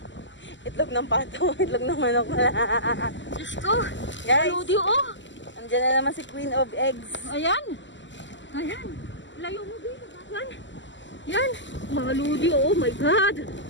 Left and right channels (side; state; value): right; late; 0.54 ms